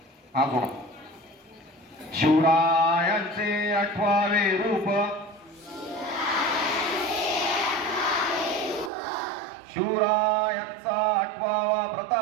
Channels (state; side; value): drops out; left; at 8.9 s